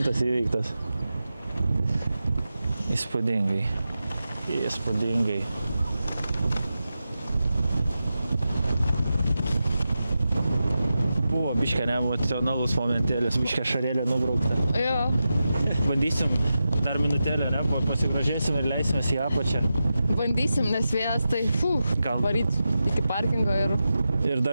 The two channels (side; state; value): both; inverted; correlation -0.91